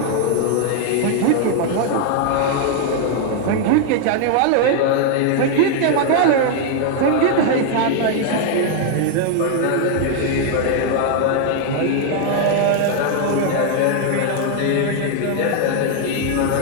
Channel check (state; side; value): different; both; correlation 0.00